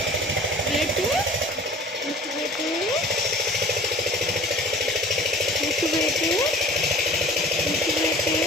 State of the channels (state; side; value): normal; both; correlation 0.45